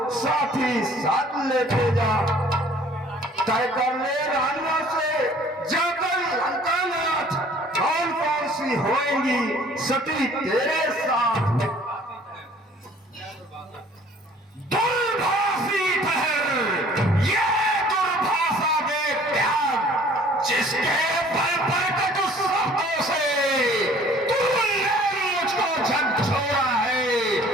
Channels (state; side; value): normal; both; correlation 0.54